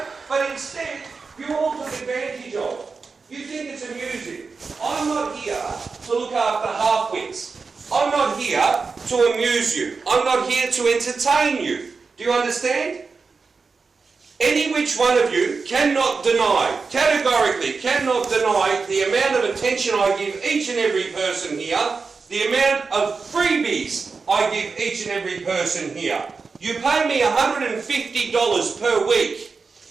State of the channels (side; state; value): left; quieter; 4.7 dB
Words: But instead, you all took advantage of. You think it's amusing. I'm not here to look after half-wits. I'm not here to amuse you. I'm not here to entertain you. Do you understand? Any which one of you cannot deny, categorically cannot deny the amount of attention I give each and every person here, the amount of freebies I give each and every person here. You pay me $150 per week.